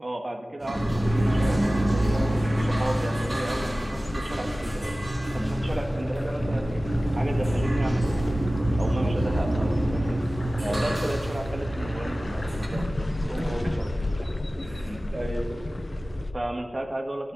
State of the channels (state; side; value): normal; both; correlation 0.97